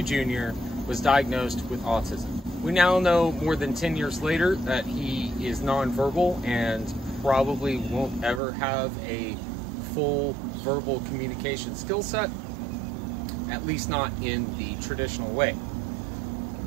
Jr., was diagnosed with autism. We now know more than 10 years later that he is nonverbal and probably won't ever have a full verbal communication skill set, at least not in the traditional way.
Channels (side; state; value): left; drops out; at 8.4 s